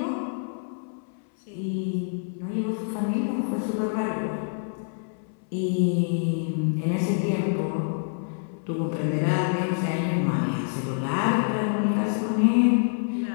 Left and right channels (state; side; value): silent; right; 61 dB below the other